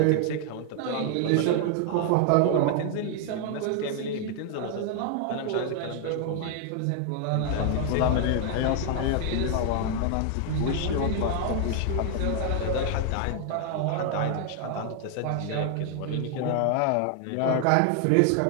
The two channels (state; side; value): different; both; correlation 0.00